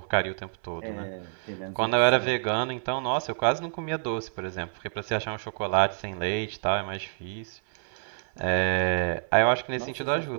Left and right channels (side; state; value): left; silent; 59 dB below the other